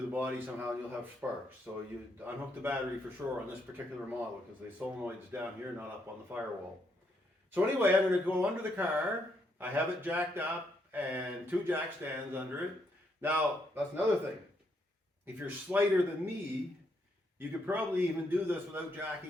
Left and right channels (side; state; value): both; normal; correlation 0.76